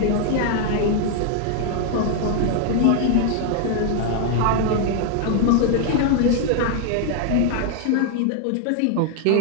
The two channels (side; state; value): both; different; correlation 0.00